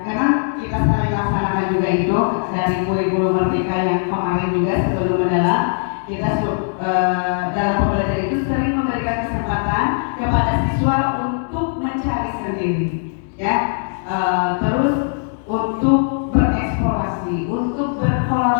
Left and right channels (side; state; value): right; silent; digital silence